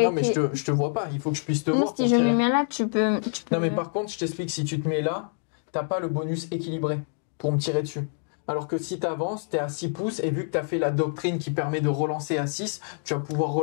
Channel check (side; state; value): right; silent; 61 dB below the other